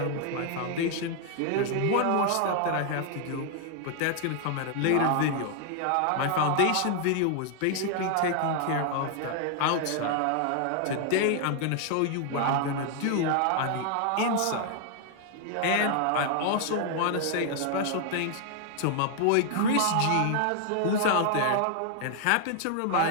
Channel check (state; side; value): different; both; correlation 0.00